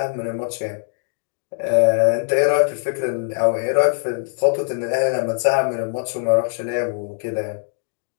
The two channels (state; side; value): silent; right; digital silence